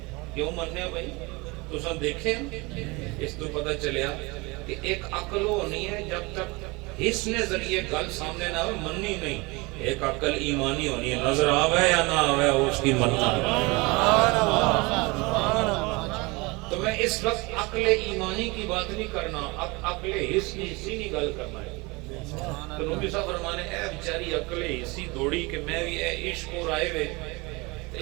کیوں مننے ہو بھائی تسن دیکھیں اس تو پتہ چلیا کہ ایک عقل ہونی ہے جب تک حس نے ذریعے گل سامنے نہ ہوئے مننی نہیں ایک عقل ایمانی ہونی ہے نظر آوے یا نہ آوے اس کی مننا تو میں اس وقت عقل ایمانی کی بات نہیں کرنا عقل حس کی حصی نہیں گل کرنا ہے تو نبی صاحب فرمانے اے بچاری عقل حصی دوڑی کہ میں بھی اے عشق اور آئے ہوئے تو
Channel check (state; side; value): quieter; left; 25.2 dB